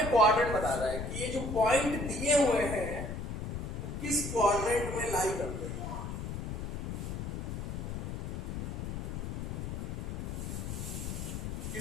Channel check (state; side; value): noise; left; rumble, 4 dB below the sound